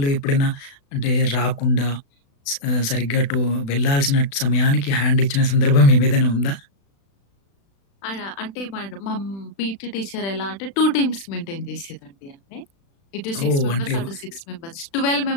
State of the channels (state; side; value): late; right; 36 ms